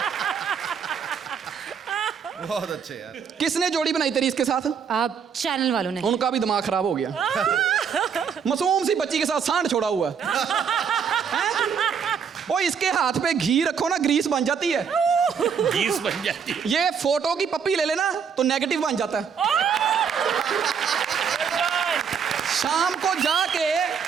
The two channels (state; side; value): quieter; left; 6.9 dB